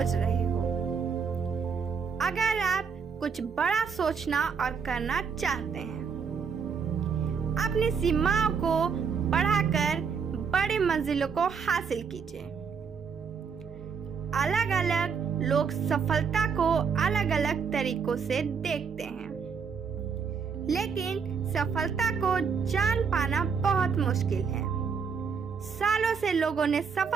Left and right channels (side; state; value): left; quieter; 6.1 dB